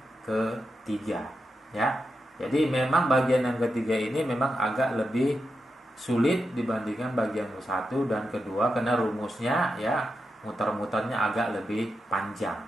ketiga, ya. Jadi memang bagian yang ketiga ini memang agak lebih sulit dibandingkan bagian satu dan kedua karena rumusnya, ya, muter-muternya agak lebih panjang,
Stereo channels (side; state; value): both; normal; correlation 0.87